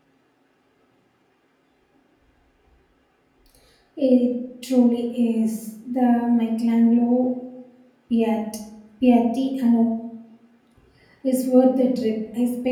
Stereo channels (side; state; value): both; identical; correlation 1.00